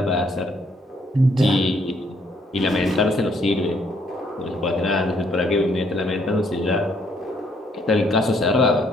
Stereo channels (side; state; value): both; normal; correlation 0.69